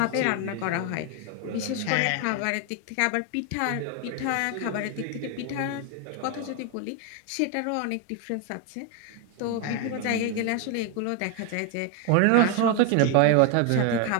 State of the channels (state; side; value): different; both; correlation 0.01